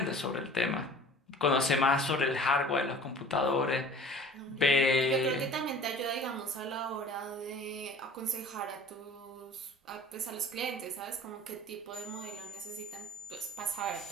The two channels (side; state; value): both; normal; correlation 0.46